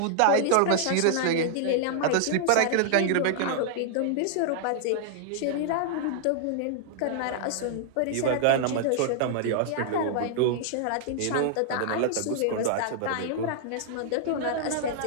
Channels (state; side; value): different; both; correlation -0.01